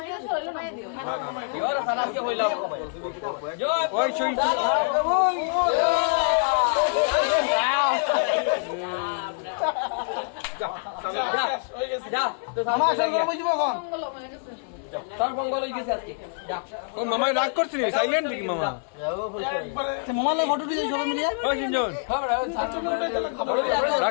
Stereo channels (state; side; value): silent; right; digital silence